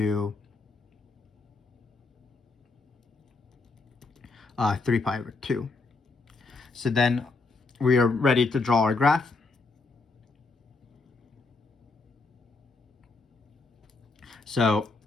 3 pi over 2. So then we are ready to draw our graph. So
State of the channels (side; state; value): right; quieter; 3.8 dB